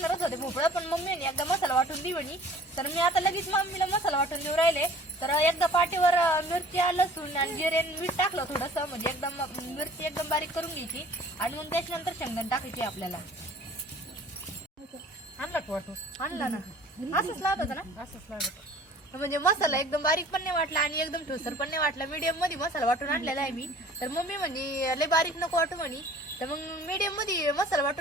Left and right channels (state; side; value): normal; both; correlation 0.49